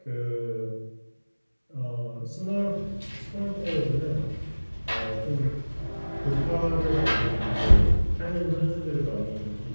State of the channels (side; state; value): both; inverted; correlation -1.00